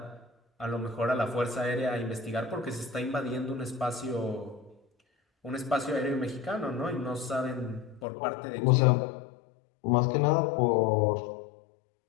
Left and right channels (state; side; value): drops out; right; at 8.1 s